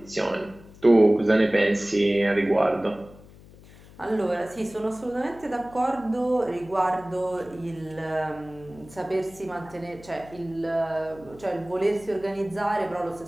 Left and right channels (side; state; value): left; noise; hum, 21 dB below the sound